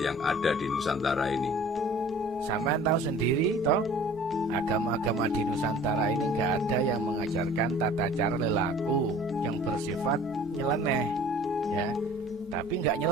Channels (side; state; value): left; noise; rumble, 24 dB below the sound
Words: yang ada di Nusantara ini. Sampean tahu sendiri toh, agama-agama di Nusantara ini nggak ada yang mengajarkan tata cara lelaku yang bersifat nyeleneh, ya. Tapi nggak